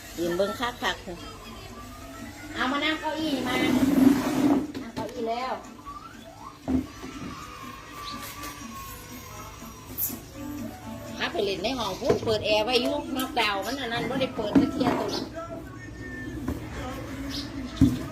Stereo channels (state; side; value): identical; both; correlation 1.00